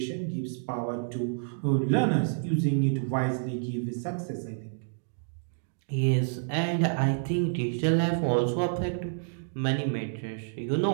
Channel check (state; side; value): silent; left; digital silence